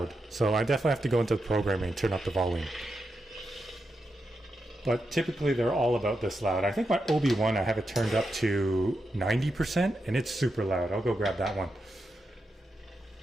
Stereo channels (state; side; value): normal; both; correlation 0.86